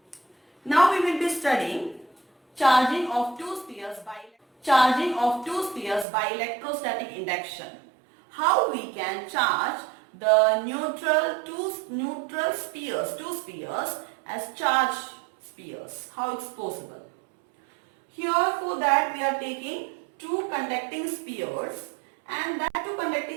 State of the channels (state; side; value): drops out; left; at 6.1 s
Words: Now we will be studying charging of two spheres by electrostatic induction. How we can charge the two spheres as charged spheres. How it's possible? Here for that we are taking two conducting spheres, and that two